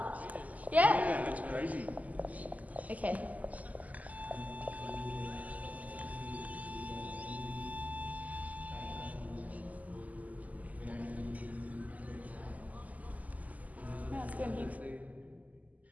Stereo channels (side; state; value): left; late; 0.076 ms